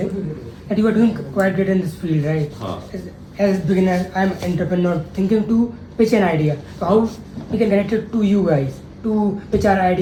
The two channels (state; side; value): identical; both; correlation 1.00